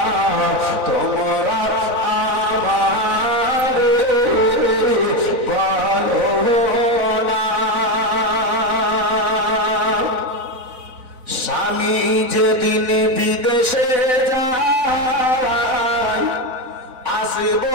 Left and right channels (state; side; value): late; left; 4.0 ms